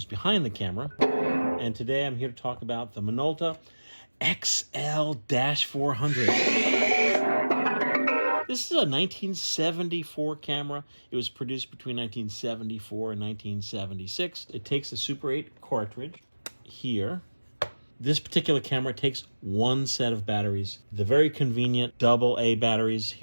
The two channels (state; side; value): inverted; both; correlation -1.00